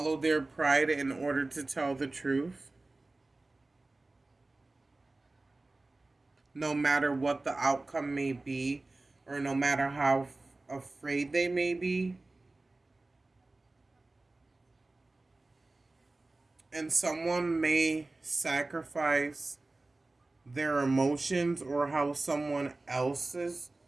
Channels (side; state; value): left; quieter; 3.1 dB